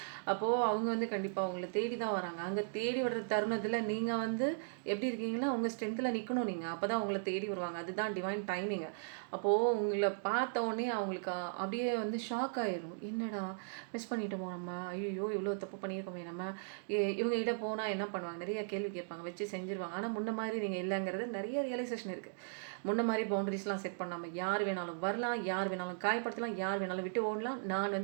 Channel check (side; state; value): left; silent; digital silence